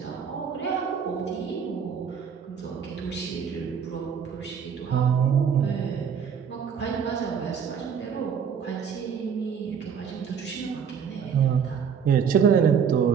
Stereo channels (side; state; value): left; quieter; 7.2 dB